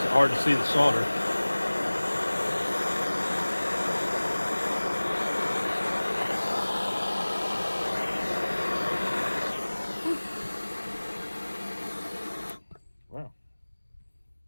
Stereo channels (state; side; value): inverted; both; correlation -1.00